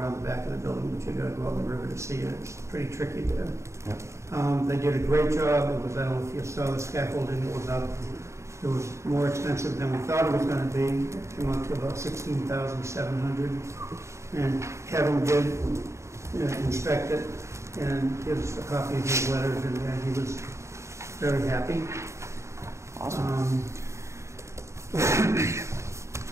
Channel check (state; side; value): late; left; 0.14 ms